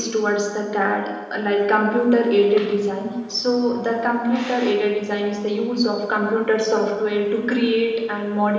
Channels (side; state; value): both; identical; correlation 1.00